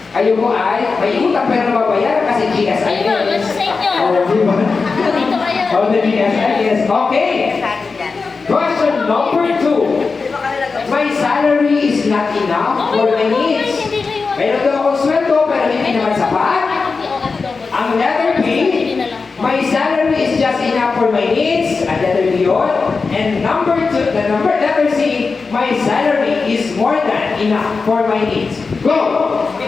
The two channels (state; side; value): quieter; right; 4.5 dB